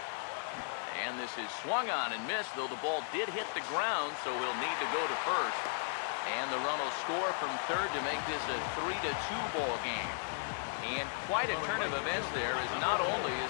And this is swung on and missed, though the ball did hit the ground, so he'll need to go to first. And the run will score from third to make this a 3-2 ball game. And quite a turn of events there, as not only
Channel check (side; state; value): right; silent; digital silence